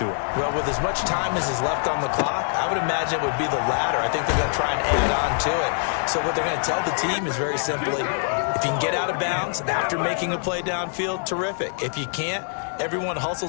it. Well, with as much time as is left on the clock, I would imagine it would be the latter. I think they're going to try and add on to it. So what they're going to tell the team is very simply, if you can get out of bounds after making a play downfield, terrific. If you can't, everyone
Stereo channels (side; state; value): right; silent; 62 dB below the other